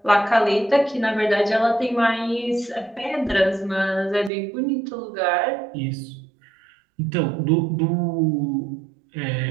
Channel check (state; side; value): drops out; left; at 4.3 s